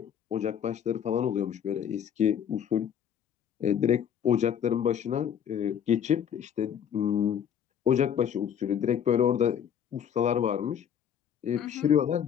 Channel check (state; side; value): quieter; right; 8.7 dB